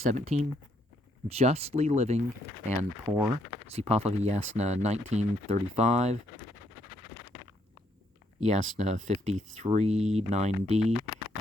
justly living and poor. See Pahlavi 19:35, Yasna 53, 9d,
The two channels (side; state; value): both; normal; correlation 0.73